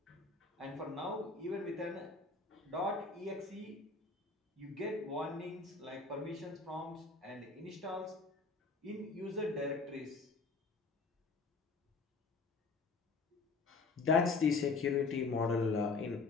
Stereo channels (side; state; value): right; quieter; 4.1 dB